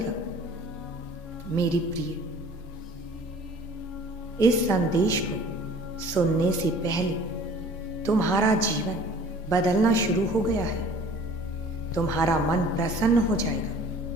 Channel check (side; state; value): both; normal; correlation 0.49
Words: मेरी प्रिय, इस संदेश को सुनने से पहले तुम्हारा जीवन बदलना शुरू हो गया है। तुम्हारा मन प्रसन्न हो जाएगा,